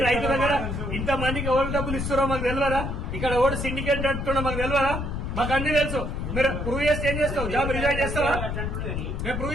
రైతు దగ్గర ఇంత మందికి ఎవరు డబ్బులు ఇస్తారో మాకు తెలియదా? ఇక్కడ ఎవడు సిండికేట్ నడుతుండో మాకు తెలియదా? మాకు అన్ని తెలుసు. మీరు ప్రూవ్ చేస్తే ఏం చేస్తావు? జాబ్ రిజైన్ చేస్తావా? మేము ప్రూవ్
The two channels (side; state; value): left; noise; rumble, 3 dB below the sound